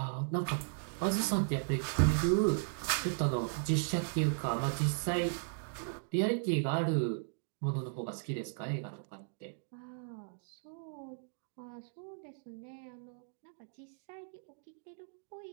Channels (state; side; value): silent; left; digital silence